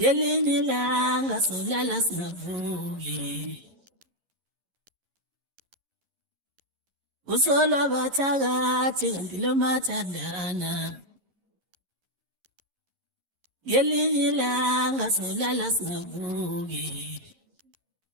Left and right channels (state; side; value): late; left; 11 ms